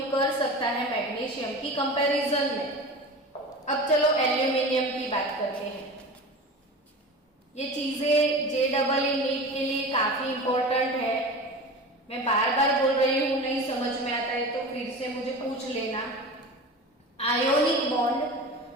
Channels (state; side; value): normal; both; correlation 0.32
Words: कर सकता है मैग्नीशियम की कंपैरिजन में। अब चलो एल्यूमिनियम की बात करते हैं। ये चीजें JEE नीट के लिए काफी इंपॉर्टेंट है। मैं बार बार बोल रही हूं, नहीं समझ में आता है तो फिर से मुझे पूछ लेना। आयोनिक बॉन्ड,